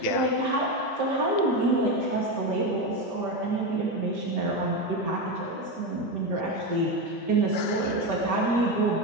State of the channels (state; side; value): normal; both; correlation 0.14